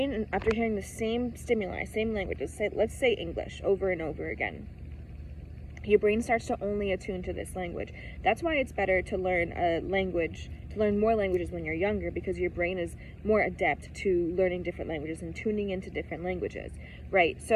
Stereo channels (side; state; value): both; identical; correlation 1.00